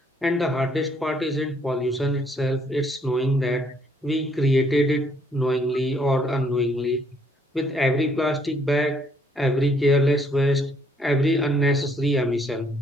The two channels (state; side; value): normal; both; correlation 0.67